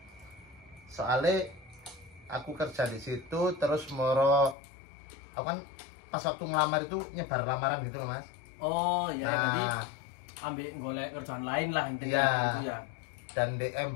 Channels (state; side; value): drops out; right; at 4.5 s